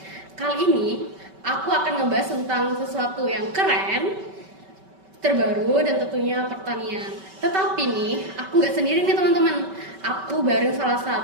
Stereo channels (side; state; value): left; late; 5.2 ms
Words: Kali ini aku akan ngebahas tentang sesuatu yang keren, terbaru dan tentunya pertanian. Tetapi nih, aku nggak sendiri nih teman-teman. Aku bareng salah